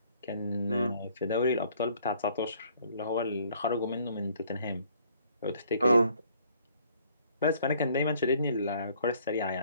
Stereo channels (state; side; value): inverted; both; correlation -0.61